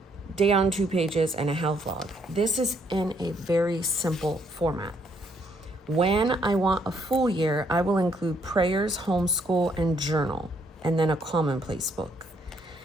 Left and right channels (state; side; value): normal; both; correlation 0.70